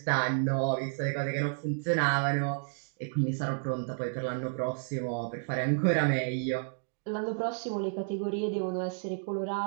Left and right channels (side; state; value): left; silent; digital silence